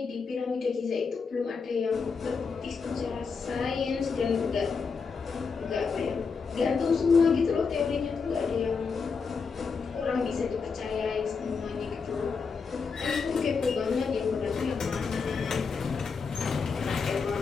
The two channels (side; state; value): right; quieter; 5.2 dB